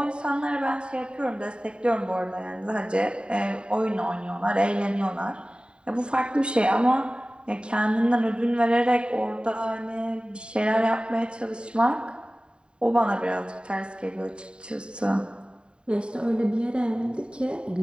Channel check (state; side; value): late; left; 0.051 ms